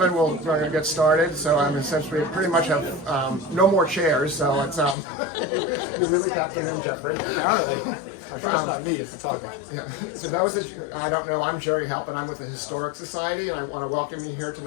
We're going to get started. So essentially pretty much have no more chairs. So it's you really tapped it in, Jeffrey. Yeah. So those that I don't know, I'm Jerry Halp, and I'm with the Historic Society, and I want to welcome you here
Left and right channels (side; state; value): right; drops out; at 5.0 s